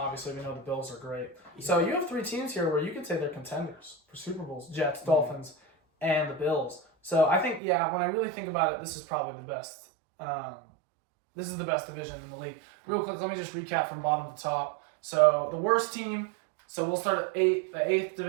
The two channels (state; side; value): drops out; left; at 7.6 s